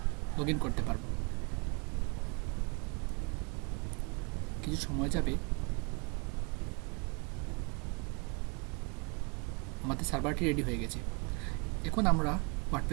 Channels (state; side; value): quieter; left; 32.7 dB